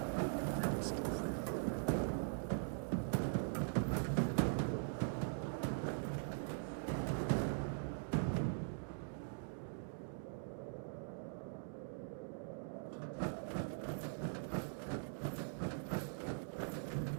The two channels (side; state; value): left; silent; digital silence